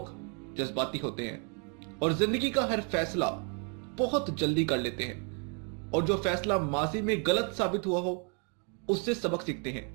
जज्बाती होते हैं और जिंदगी का हर फैसला बहुत जल्दी कर लेते हैं, और जो फैसला माजी में गलत साबित हुआ हो उससे सबक सीखते हैं,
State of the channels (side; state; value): left; quieter; 38.1 dB